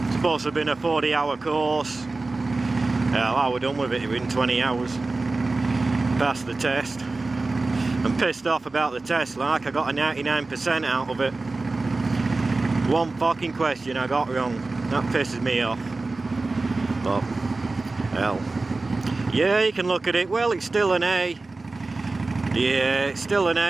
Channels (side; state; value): left; quieter; 3.4 dB